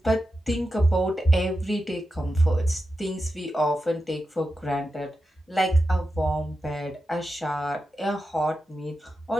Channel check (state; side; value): normal; both; correlation 0.90